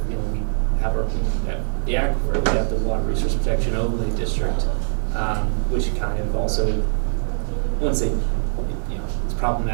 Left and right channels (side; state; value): left; silent; 64 dB below the other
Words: you know, we have the aquifer, we have the Water Resource Protection Overlay District, which kind of also, I wouldn't say, you know, it's